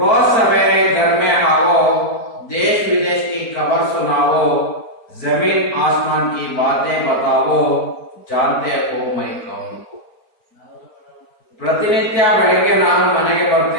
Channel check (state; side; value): late; right; 4.4 ms